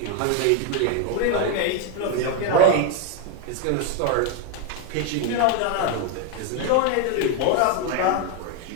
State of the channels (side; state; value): both; different; correlation 0.01